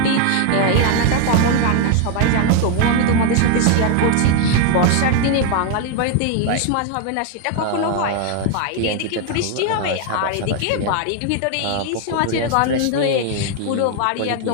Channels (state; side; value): different; both; correlation 0.00